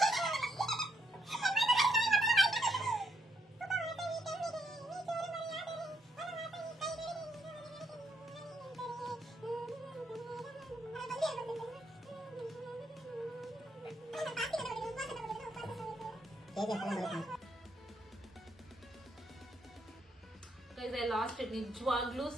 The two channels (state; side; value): normal; both; correlation 0.76